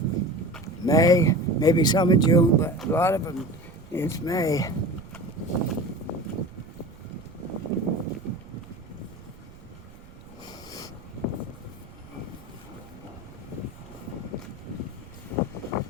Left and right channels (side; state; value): right; noise; rumble, 19 dB below the sound